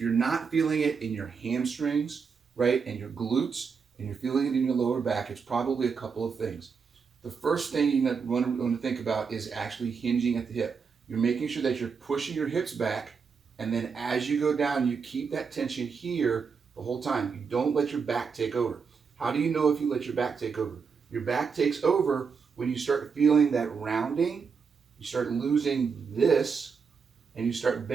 you're not feeling it in your hamstrings, right, and your glutes, and you're feeling it in your lower back, it's probably a couple of things. The first thing you want to think about is actually hinging at the hip. You're making sure that you're pushing your hips back, and then as you go down, you keep that tension here the whole time. You don't let your back take over. How do you know if you let your back take over? Your back takes over when you start feeling that rounding, you start losing this, and you start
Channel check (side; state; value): left; quieter; 5.7 dB